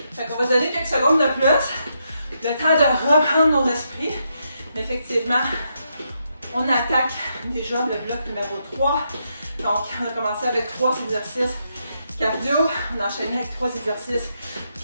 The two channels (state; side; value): inverted; both; correlation -0.80